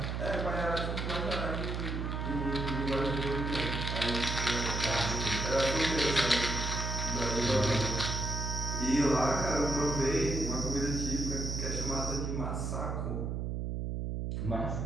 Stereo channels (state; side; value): noise; right; hum, 2 dB below the sound